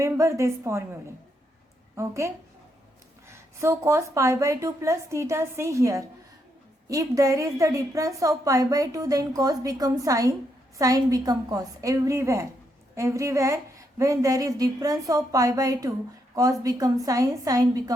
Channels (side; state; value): both; normal; correlation 0.78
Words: this formula. Okay, So cos pi by 2 plus theta, see here. If there is the difference of pi by 2, then cos becomes sin, sin become cos. Everywhere when there is difference of pi by 2, cos become sin, sin